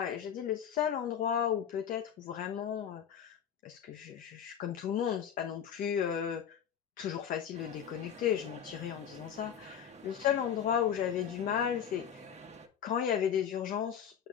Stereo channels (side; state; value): right; quieter; 8.7 dB